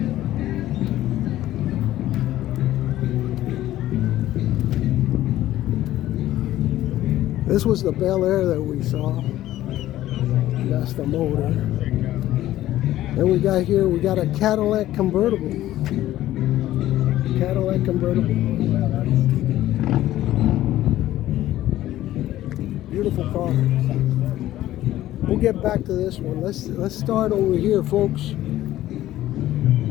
This was the Bel Air that we saw. That's the motor. Then we got a Cadillac convertible. Cadillac convertible. Beautiful car. We'll get back to this one. Let's start over here, folks.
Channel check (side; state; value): right; quieter; 14.2 dB